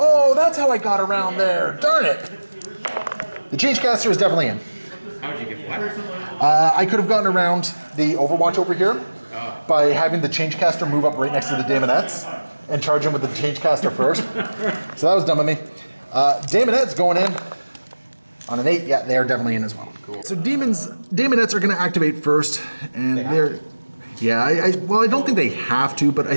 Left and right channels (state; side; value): inverted; both; correlation -1.00